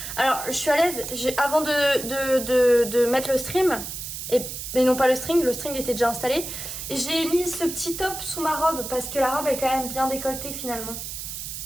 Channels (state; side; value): noise; right; hiss, 7 dB below the sound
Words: Alors, je suis à l'aise. Avant de mettre le stream, mais non pas le string était déjà installé. J'ai mis ce petit top sous ma robe parce que la robe est quand même bien décolletée finalement.